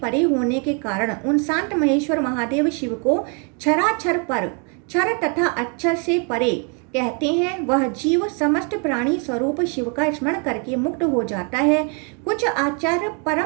होने के कारण उन शांत महेश्वर महादेव शिव को क्षराक्षर पर क्षर तथा अक्षर से परे कहते हैं। वह जीव समस्त प्राणी स्वरूप शिव का स्मरण करके मुक्त हो जाता है। कुछ आचार्य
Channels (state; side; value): quieter; left; 37.1 dB